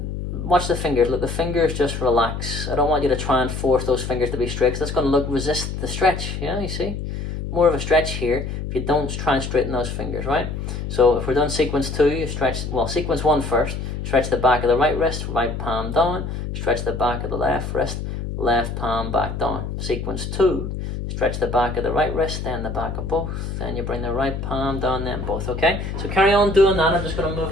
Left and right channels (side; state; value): left; noise; hum, 5 dB below the sound